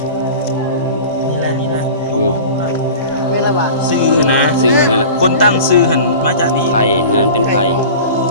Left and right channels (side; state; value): both; inverted; correlation -0.37